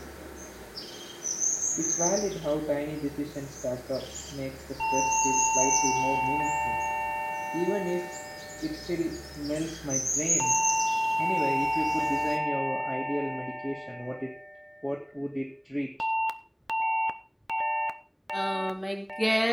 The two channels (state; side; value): identical; both; correlation 1.00